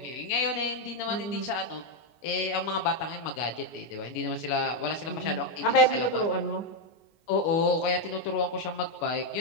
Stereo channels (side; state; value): right; late; 24 ms